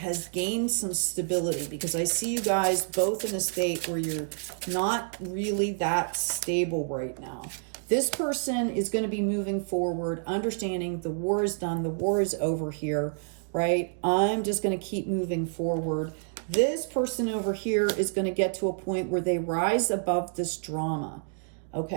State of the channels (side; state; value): left; silent; digital silence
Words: gained some stability, because I see you guys both in a state where you're not really that stable right now. This person is going to be moving forward, understanding the war is done, the war is over here, right? I'm just going to keep moving forward. This person over here is going to get to a point where they rise above this drama,